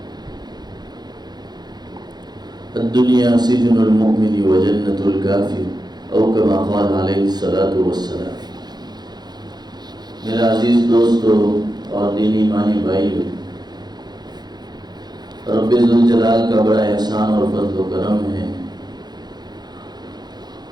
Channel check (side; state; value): left; late; 0.20 ms